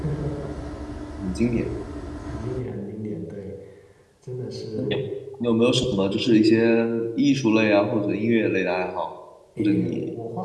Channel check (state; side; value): identical; both; correlation 1.00